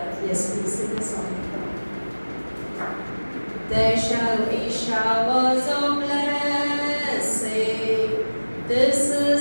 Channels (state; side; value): inverted; both; correlation -1.00